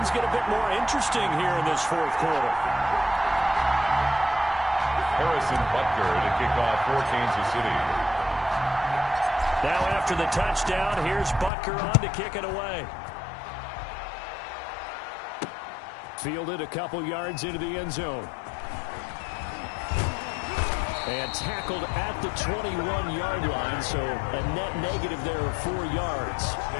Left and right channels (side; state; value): right; drops out; at 11.5 s